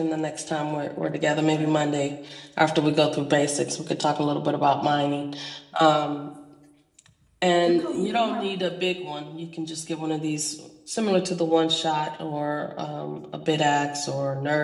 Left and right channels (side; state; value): both; identical; correlation 1.00